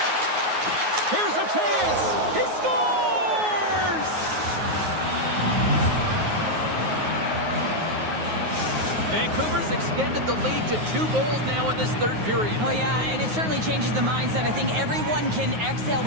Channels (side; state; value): left; late; 9.4 ms